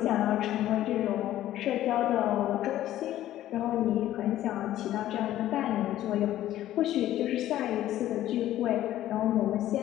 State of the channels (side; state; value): right; quieter; 13.4 dB